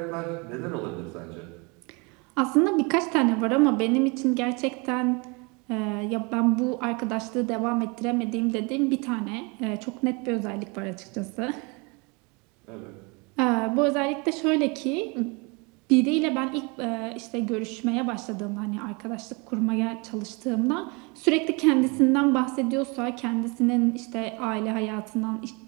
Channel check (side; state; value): left; quieter; 29.6 dB